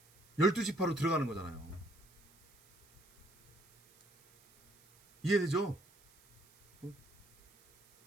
12지파로 들어가는 거잖아요. 이해되죠?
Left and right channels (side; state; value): right; noise; hiss, 29 dB below the sound